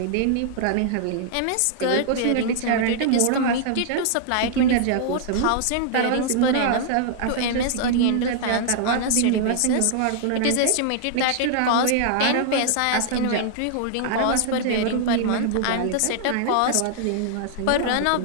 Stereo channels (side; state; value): both; different; correlation -0.01